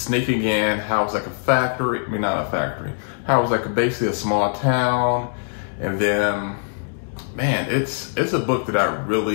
in, how it was like a factory, I mean not a factory, how it was like basically a small town. And then, man, it's a book that I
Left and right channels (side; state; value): right; silent; digital silence